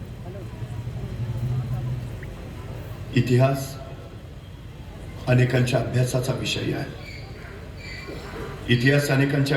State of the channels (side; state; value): both; identical; correlation 1.00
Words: इतिहास अनेकांच्या अभ्यासाचा विषय आहे. इतिहास अनेकांच्या